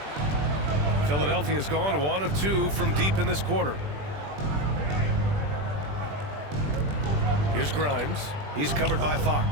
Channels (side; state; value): left; late; 20 ms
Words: Philadelphia's gone 1 of 2 from deep in this quarter. Here's Grimes. He's covered by